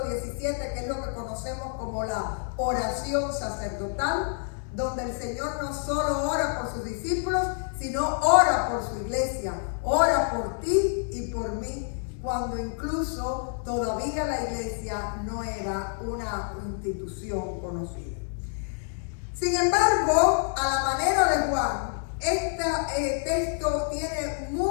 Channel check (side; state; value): right; silent; 60 dB below the other